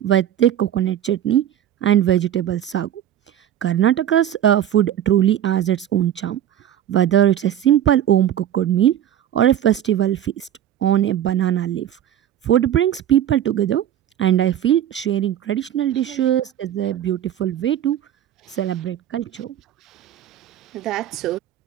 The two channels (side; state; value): left; quieter; 10.9 dB